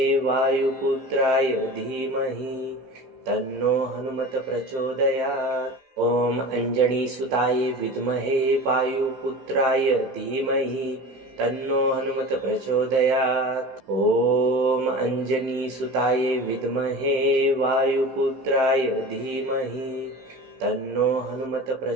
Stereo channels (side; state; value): left; late; 15 ms